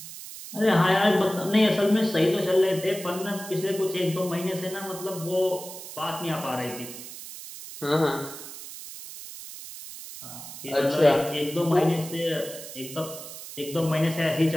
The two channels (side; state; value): right; noise; hiss, 12 dB below the sound